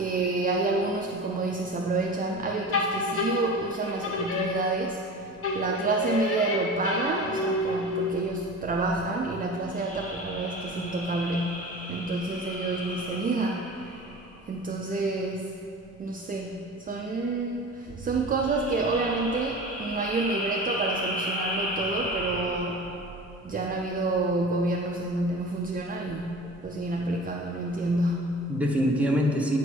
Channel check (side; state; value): both; normal; correlation 0.37